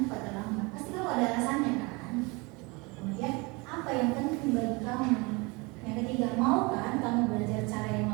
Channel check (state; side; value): quieter; left; 27.0 dB